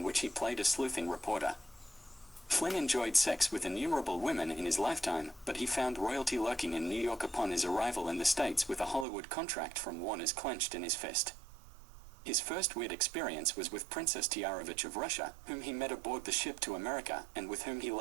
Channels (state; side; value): drops out; left; at 9.1 s